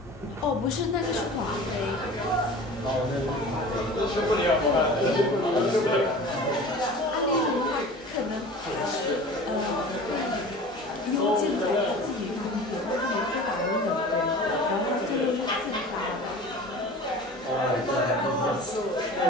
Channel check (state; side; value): normal; both; correlation 0.39